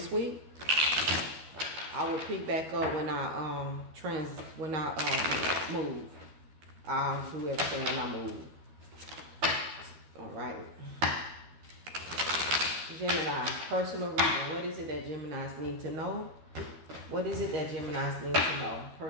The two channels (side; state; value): left; late; 13 ms